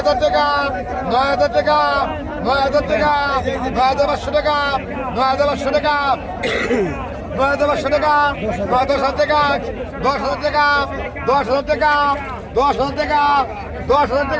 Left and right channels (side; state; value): both; identical; correlation 1.00